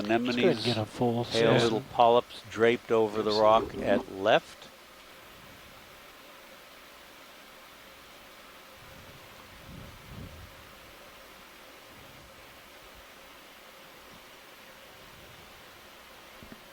Get a full pale set. little polyps draped over the rock at left.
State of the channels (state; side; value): identical; both; correlation 1.00